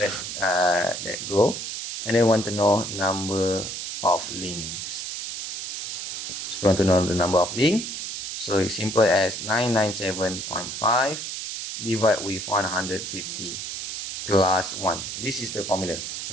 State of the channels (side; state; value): right; noise; hiss, 6 dB below the sound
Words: let go. And then want to know number of links. So we want to know the number of links. So it's simple as 997.5 divided with 150 plus 1. This is the formula.